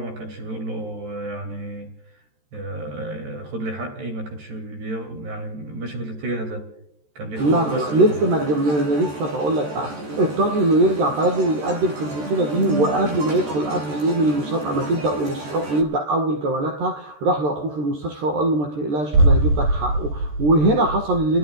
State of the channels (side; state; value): left; late; 14 ms